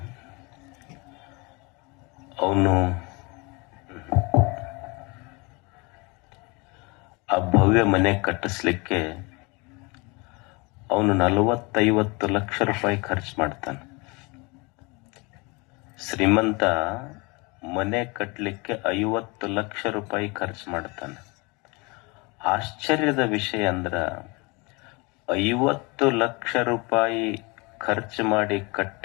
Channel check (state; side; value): quieter; right; 27.7 dB